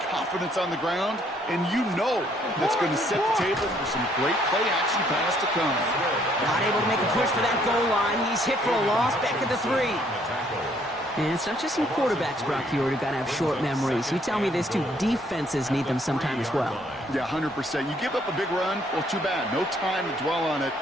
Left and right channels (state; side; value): normal; both; correlation 0.66